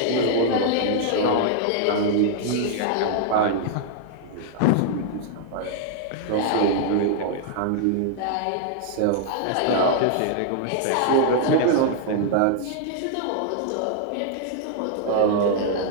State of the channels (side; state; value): both; different; correlation -0.01